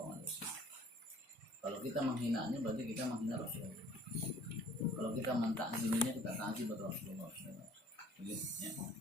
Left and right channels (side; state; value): both; normal; correlation 0.54